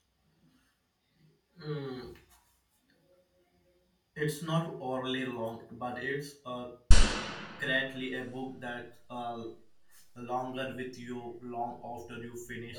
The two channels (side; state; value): both; identical; correlation 1.00